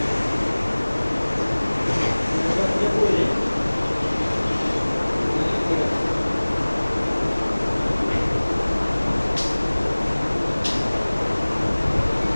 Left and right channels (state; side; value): inverted; both; correlation -1.00